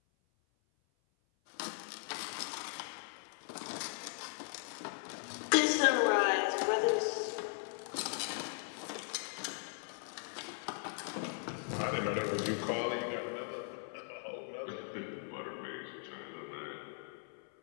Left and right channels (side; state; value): right; silent; 52 dB below the other